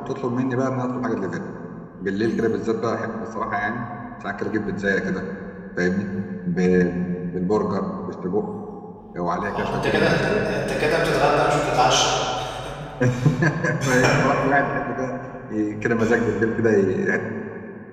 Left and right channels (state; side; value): identical; both; correlation 1.00